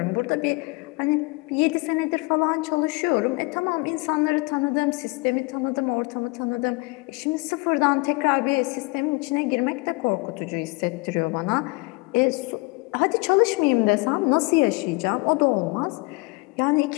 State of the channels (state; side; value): quieter; right; 26.8 dB